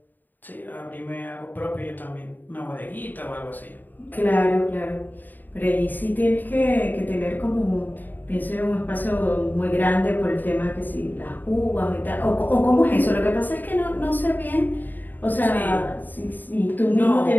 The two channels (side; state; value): right; late; 0.088 ms